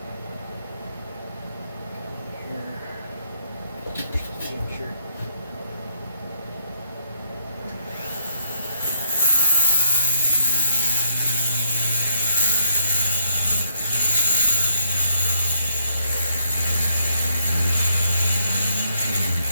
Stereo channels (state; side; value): inverted; both; correlation -0.71